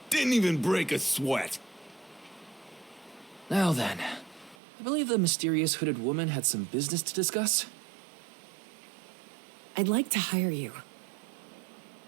Didn't even break a sweat. Now then, I believe the mysterious hooded woman had some business to discuss. I'd like to hire you.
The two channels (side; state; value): left; drops out; at 4.5 s